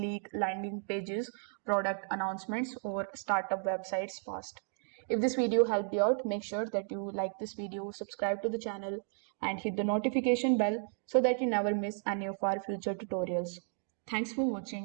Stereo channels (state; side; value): silent; left; 55 dB below the other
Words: landing pages, product announcements, or startup websites fast. If this video helped you out, make sure that you like this video, subscribe to the channel, and hit the notification bell so that you never miss any of our future tutorials. Thanks for